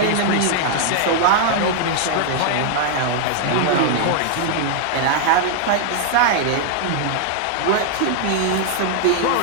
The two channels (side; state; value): both; different; correlation 0.00